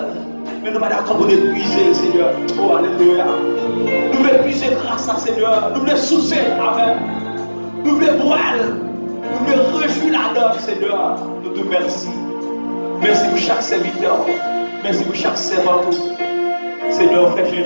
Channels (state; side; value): inverted; both; correlation -1.00